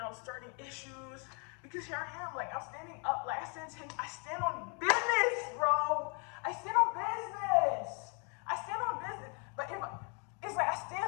starting issues. Because here I am, like, I'm standing up, like, I stand on business, bro. I stand on business. But it's like I stand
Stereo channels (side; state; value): right; quieter; 36.6 dB